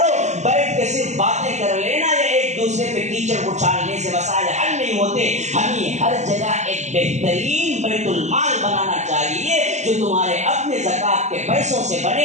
بیٹھ کے صرف باتیں کر لینا یا ایک دوسرے پہ کیچڑ اچھالنے سے مسائل حل نہیں ہوتے۔ ہمیں ہر جگہ ایک بہترین بیت المال بنانا چاہیے جو تمہارے اپنے زکوٰۃ کے پیسوں سے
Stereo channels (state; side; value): late; left; 0.33 ms